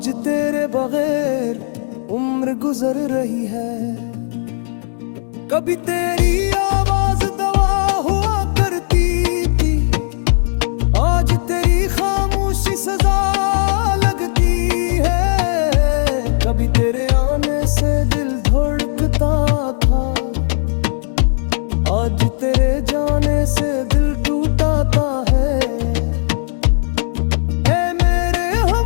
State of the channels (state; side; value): silent; right; digital silence